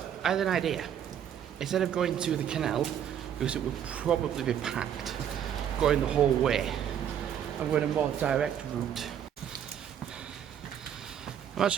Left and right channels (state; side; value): quieter; left; 9.3 dB